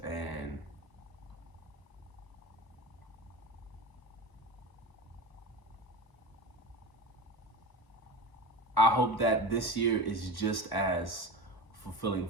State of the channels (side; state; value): right; late; 1.0 ms